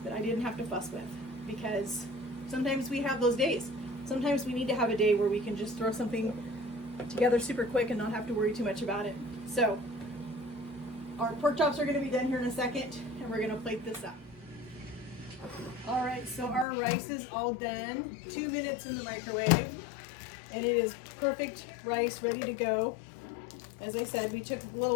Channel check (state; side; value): drops out; right; at 16.7 s